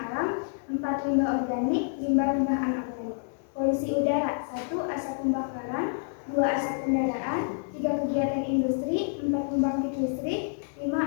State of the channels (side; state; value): right; silent; digital silence